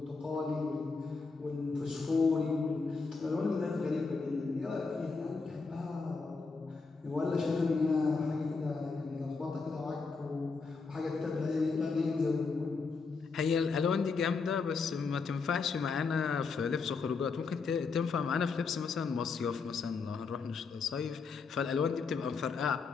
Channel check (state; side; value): quieter; right; 4.6 dB